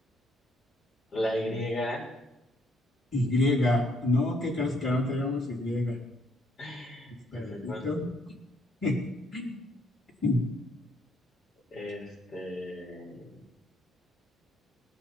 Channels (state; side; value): normal; both; correlation 0.68